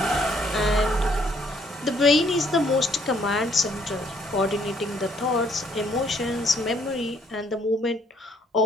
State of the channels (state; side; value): normal; both; correlation 0.66